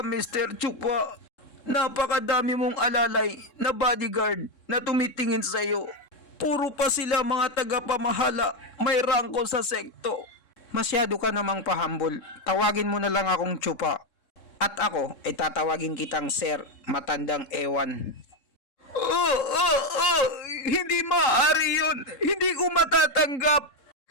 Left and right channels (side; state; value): right; late; 3.7 ms